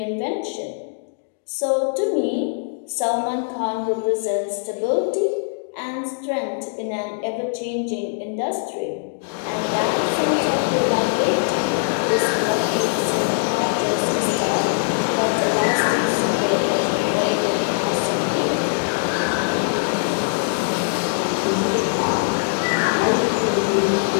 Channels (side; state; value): right; silent; digital silence